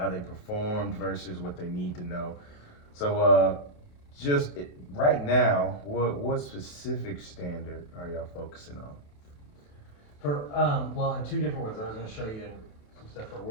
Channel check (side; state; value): right; late; 28 ms